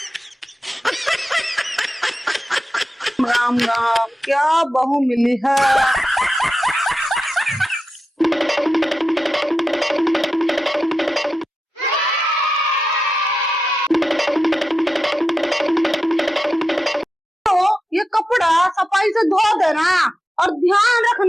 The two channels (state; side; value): normal; both; correlation 0.90